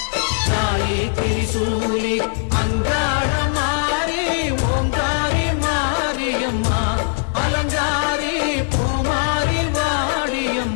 தாயே திரிசூலி அங்காள மாறி ஓங்காரி மாரியம்மா அலங்காரி பூமாரி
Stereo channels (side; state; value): right; silent; digital silence